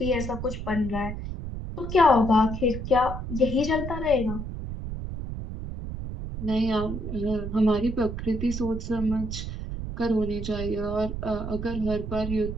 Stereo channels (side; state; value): right; noise; rumble, 6 dB below the sound